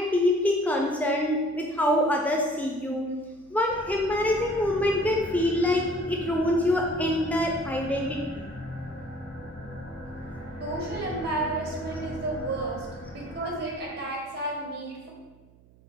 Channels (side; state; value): right; noise; hum, 27 dB below the sound